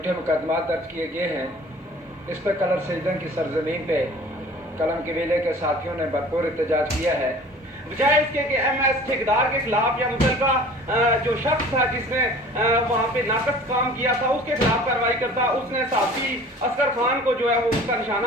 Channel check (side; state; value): both; normal; correlation 0.46